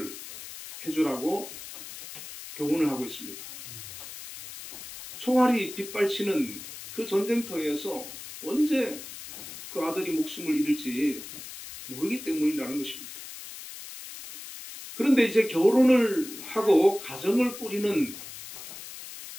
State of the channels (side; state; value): left; noise; hiss, 12 dB below the sound